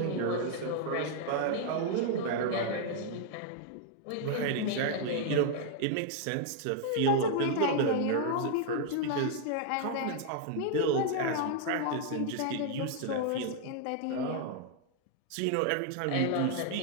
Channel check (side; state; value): both; different; correlation 0.00